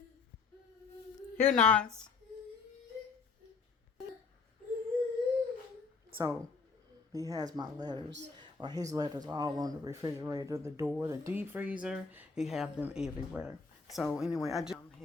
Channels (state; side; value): quieter; right; 4.7 dB